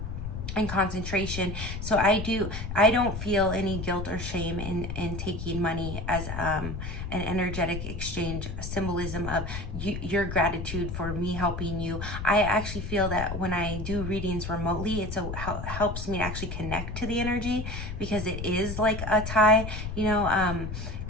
and concentration. So I don't feel any guilt or shame in taking money as an energetic exchange, symbolism of your gratitude for me helping you. I actually feel that when I do readings remotely, it helps me to actually connect to the energy, because it is like a tie,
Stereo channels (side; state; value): left; noise; rumble, 6 dB below the sound